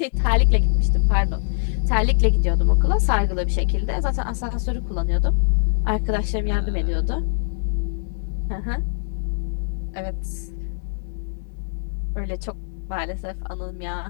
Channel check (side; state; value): right; silent; digital silence